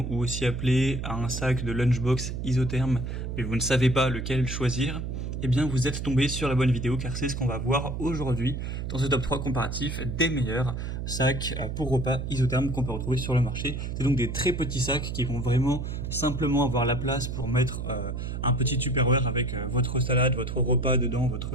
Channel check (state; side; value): noise; right; hum, 4 dB below the sound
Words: ou aussi appelé un sac de lunchbox isotherme, mais vous ne savez pas lequel choisir, eh bien vous êtes tombé sur la bonne vidéo car c'est ce qu'on va voir aujourd'hui dans ce top 3 comparatif des meilleurs sacs pour repas isothermes qu'on peut retrouver sur le marché. C'est donc des très petits sacs qui vont vraiment simplement avoir la place pour mettre un petit Tupperware avec votre salade, votre repas dedans,